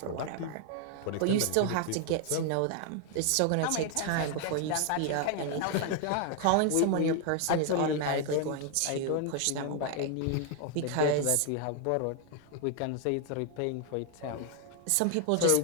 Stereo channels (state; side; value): different; both; correlation 0.00